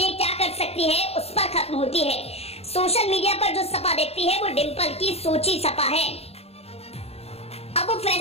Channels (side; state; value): right; late; 0.29 ms